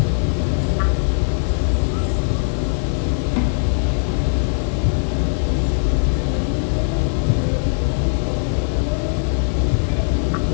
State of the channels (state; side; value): silent; right; digital silence